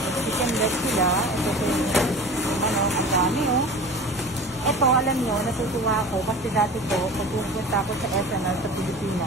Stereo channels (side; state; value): both; normal; correlation 0.37